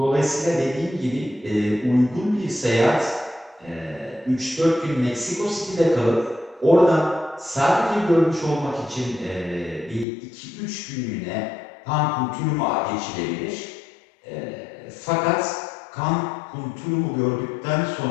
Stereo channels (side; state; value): right; drops out; at 10.1 s